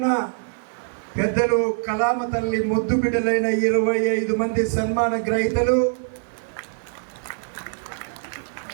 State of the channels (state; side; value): silent; left; digital silence